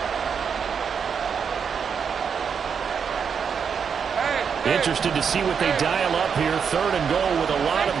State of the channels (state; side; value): quieter; left; 6.7 dB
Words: Interested to see what they dial up here. Third and goal with a lot of